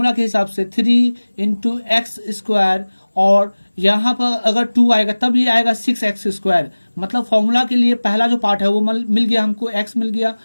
के हिसाब से 3 इंटू एक्स स्क्वायर, और यहाँ पर अगर 2 आएगा तब ये आएगा 6x स्क्वायर। मतलब फॉर्मूला के लिए पहला जो पार्ट है वो मिल गया हमको, x मिल गया,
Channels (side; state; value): both; inverted; correlation -1.00